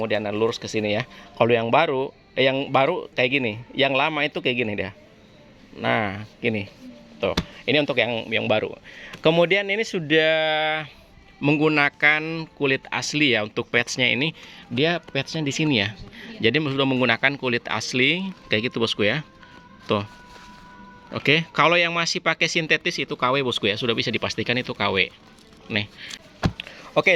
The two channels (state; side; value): identical; both; correlation 1.00